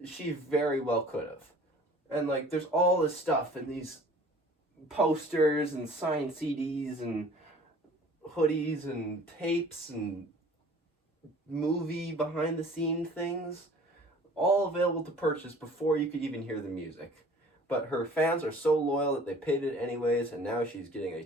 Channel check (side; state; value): both; normal; correlation 0.49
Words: she very well could have. And like, there's all this stuff and these posters and signed CDs and hoodies and tapes and movie behind the scene things, all available to purchase before you could even hear the music. But her fans are so loyal that they paid it anyways, and now she's getting a